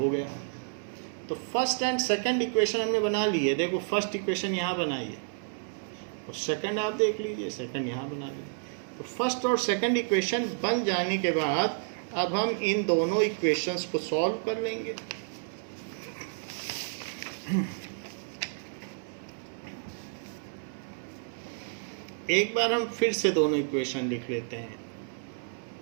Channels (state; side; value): silent; left; 58 dB below the other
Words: गया। तो फर्स्ट एंड सेकंड इक्वेशन हमने बना ली है। देखो फर्स्ट इक्वेशन यहाँ बनाई है और सेकंड आप देख लीजिए, सेकंड यहाँ बना लीजिए। तो फर्स्ट और सेकंड इक्वेशन बन जाने के बाद अब हम इन दोनों इक्वेशंस को सॉल्व कर लेंगे। एक बार हम फिर से दोनों इक्वेशन लिख लेते हैं।